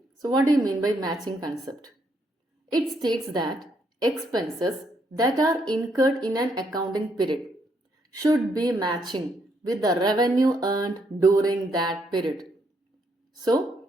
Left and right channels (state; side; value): normal; both; correlation 0.74